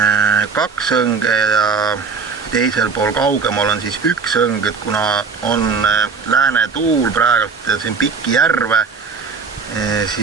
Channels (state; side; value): quieter; left; 5.1 dB